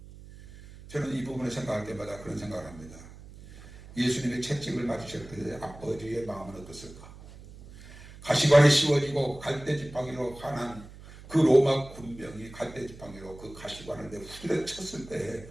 저는 이 부분을 생각할 때마다 그런 생각을 합니다. 예수님의 채찍을 맞으실 때 아버지의 마음은 어떻을까? 가시관이 씌워지고 갈대지팡이로 환한 그 로마 군병이 갈대지팡이로 그 가시관을 내 후드려 쳤을 때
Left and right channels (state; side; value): noise; right; hum, 18 dB below the sound